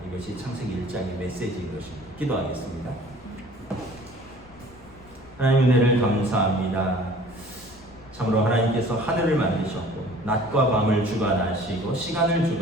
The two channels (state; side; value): noise; left; rumble, 23 dB below the sound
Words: 이것이 창세기 1장의 메시지인 것입니다. 기도하겠습니다. 하나님 은혜를 감사합니다. 참으로 하나님께서 하늘을 만드셨고 낮과 밤을 주관하시고 시간을